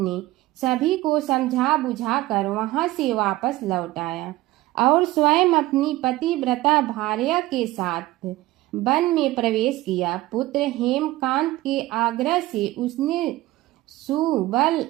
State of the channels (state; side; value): quieter; left; 17.6 dB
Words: सभी को समझा बुझाकर वहां से वापस लौट आया और स्वयं अपनी पतिव्रता भार्या के साथ वन में प्रवेश किया। पुत्र हेमकांत के आग्रह से उसने सुबल